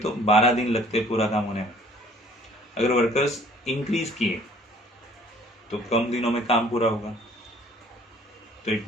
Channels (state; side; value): normal; both; correlation 0.55